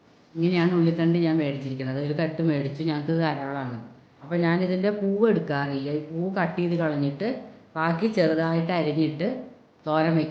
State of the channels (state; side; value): identical; both; correlation 1.00